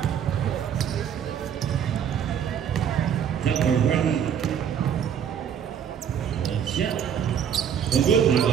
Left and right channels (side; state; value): left; quieter; 8.5 dB